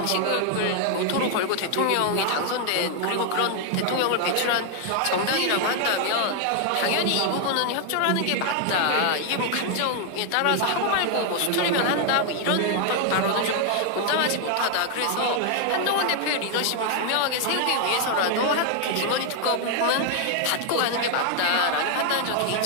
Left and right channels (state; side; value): different; both; correlation 0.00